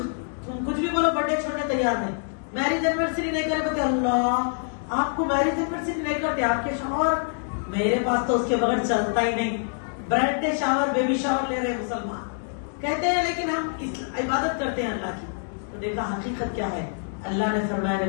کچھ بھی بولو برتھ ڈے چھوڑنے تیار نہیں، میرج اینیورسری نہیں کرے بولتے اللہ آپ کو میرج اینیورسری نہیں کرتے آپ کے شوہر، میرے پاس تو اس کے بغیر چلتا ہی نہیں. Birth day shower baby shower لے رہے مسلمان کہتے ہیں، لیکن ہم عبادت کرتے ہیں اللہ کی. تو دیکھا حقیقت کیا ہے. اللہ نے فرمایا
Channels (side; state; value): right; silent; digital silence